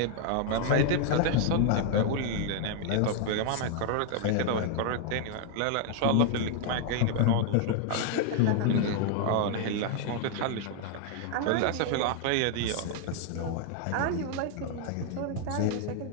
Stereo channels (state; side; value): different; both; correlation 0.00